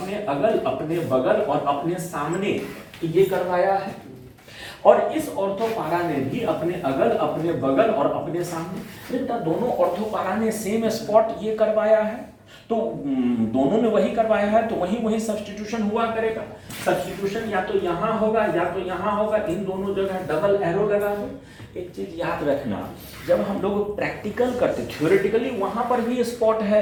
अगल अपने बगल और अपने सामने ये करवाया है, और इस ऑर्थोपारा ने भी अपने अगल अपने बगल और अपने सामने। बेटा दोनों ऑर्थोपारा ने सेम स्पॉट ये करवाया है, तो दोनों ने वही करवाया है तो वही वही सब्स्टिट्यूशन हुआ करेगा। सब्स्टिट्यूशन या तो यहाँ होगा या तो यहाँ होगा, इन दोनों जगह डबल एरो लगा दो। एक चीज याद रखना, जब हम लोग प्रैक्टिकल करते, थ्योरेटिकली वहां पर भी स्पॉट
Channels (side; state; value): both; identical; correlation 1.00